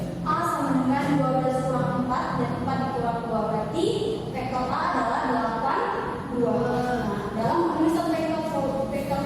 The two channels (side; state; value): both; identical; correlation 1.00